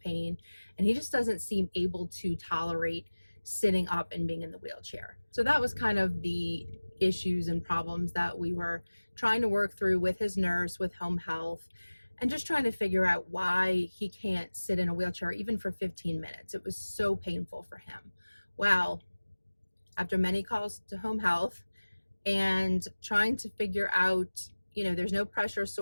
and he just doesn't seem able to tolerate sitting up and being in the wheelchair. So that was kind of the issues and problems that we were trying to work through with his nurse, with home health, and just trying to figure out why he can't sit in a wheelchair even for 15 minutes. It was so painful for him. Well, after many calls to home health and trying to figure out, you know, there's no pressure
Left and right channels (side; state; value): both; inverted; correlation -1.00